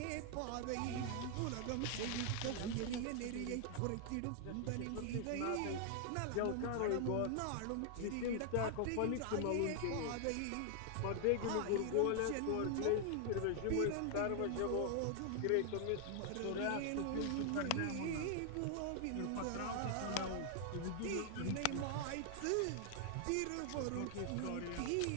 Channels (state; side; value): different; both; correlation 0.00